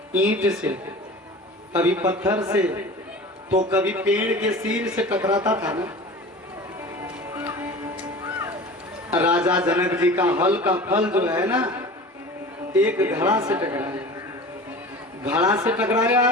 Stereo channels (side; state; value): both; normal; correlation 0.37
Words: ईंट से, कभी पत्थर से, तो कभी पेड़ के सिर से टकराता था ना। राजा जनक जी का हल का फल जो है ना, एक घड़ा से टकराया। घड़ा से टकराया,